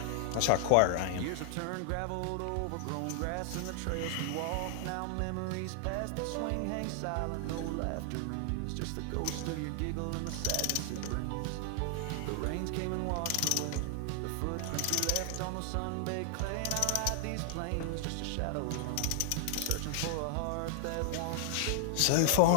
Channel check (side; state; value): both; different; correlation -0.01